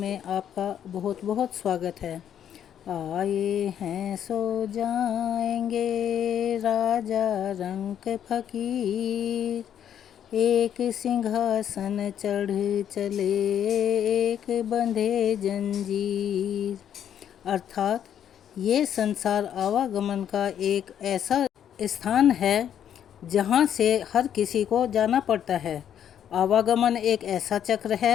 आपका बहुत बहुत स्वागत है। आए हैं सो जाएंगे राजा रंक फकीर, एक सिंहासन चढ़ चले एक बंधे जंजीर। अर्थात ये संसार आवागमन का एक ऐसा स्थान है जहाँ से हर किसी को जाना पड़ता है। आवागमन एक ऐसा चक्र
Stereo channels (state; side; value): quieter; right; 9.5 dB